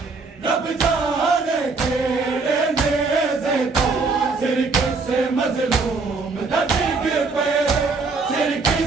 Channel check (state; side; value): quieter; left; 4.1 dB